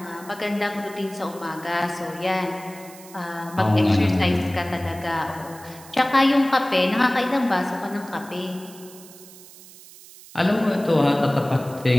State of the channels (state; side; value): noise; right; hiss, 20 dB below the sound